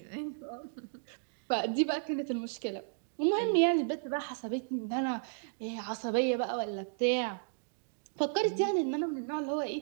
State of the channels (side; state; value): left; silent; digital silence